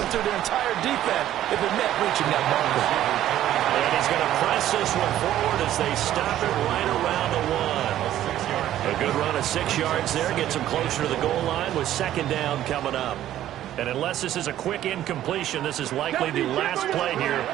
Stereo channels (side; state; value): left; quieter; 12.6 dB